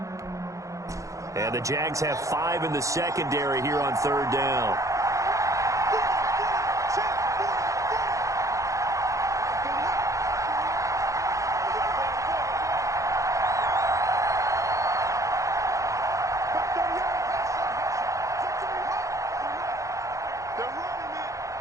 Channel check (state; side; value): late; left; 0.15 ms